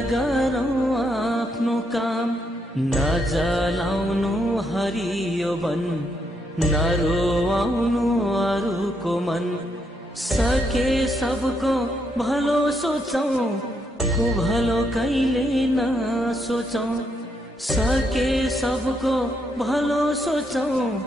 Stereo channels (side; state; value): both; normal; correlation 0.77